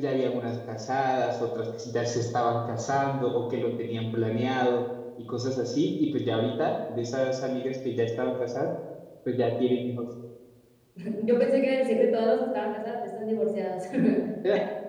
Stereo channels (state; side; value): identical; both; correlation 1.00